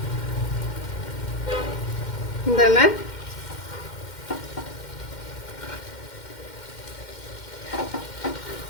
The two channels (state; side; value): late; right; 2.1 ms